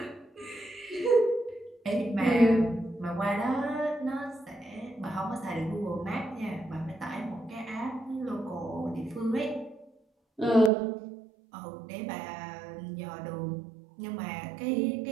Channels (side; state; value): left; drops out; at 10.7 s